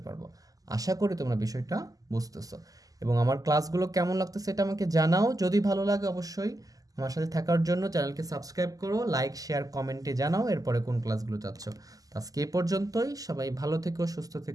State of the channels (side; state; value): left; late; 0.17 ms